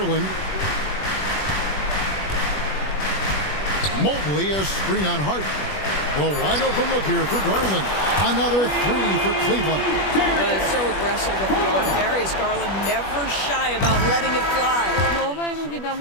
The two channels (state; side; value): late; right; 21 ms